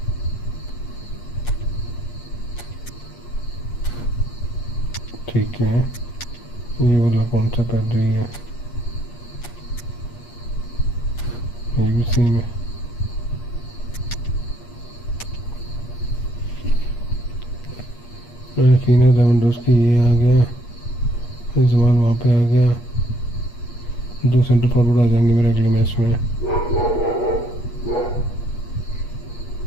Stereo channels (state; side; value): late; right; 8.4 ms